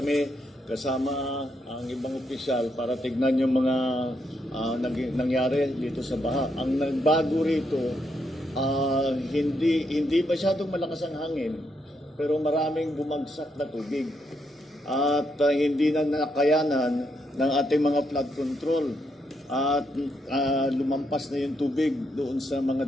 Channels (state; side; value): normal; both; correlation 0.79